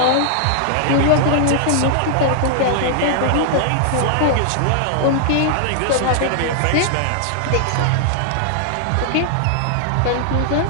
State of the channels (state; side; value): different; both; correlation -0.01